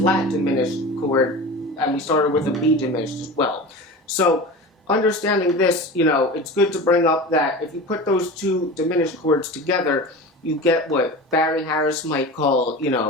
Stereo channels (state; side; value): normal; both; correlation 0.32